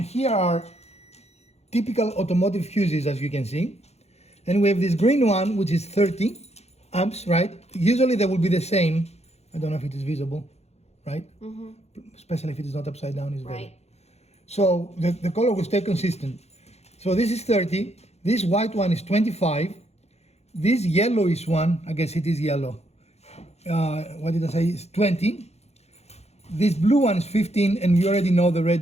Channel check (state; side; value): late; right; 0.31 ms